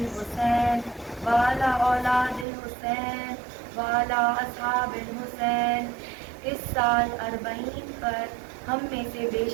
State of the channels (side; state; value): left; drops out; at 2.5 s